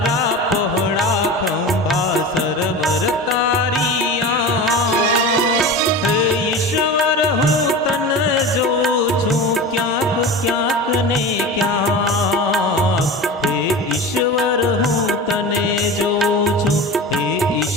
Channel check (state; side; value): normal; both; correlation 0.30